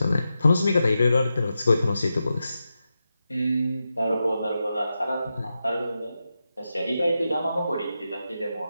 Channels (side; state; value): both; inverted; correlation -0.89